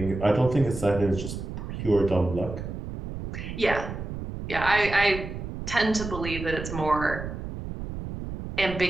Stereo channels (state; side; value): noise; right; rumble, 7 dB below the sound